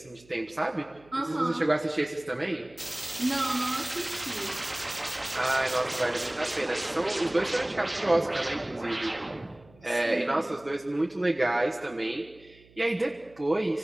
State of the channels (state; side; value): noise; right; hum, 27 dB below the sound